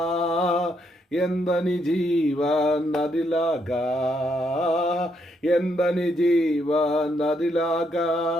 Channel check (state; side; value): normal; both; correlation 0.76